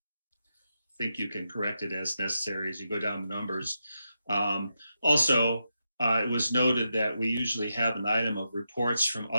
think you can correct it as necessary as you go down the numbers. Also, it was noted that we usually have an item of reports from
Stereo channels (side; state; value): both; inverted; correlation -0.86